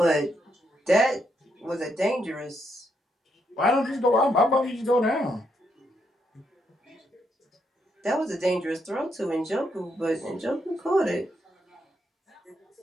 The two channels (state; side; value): normal; both; correlation 0.78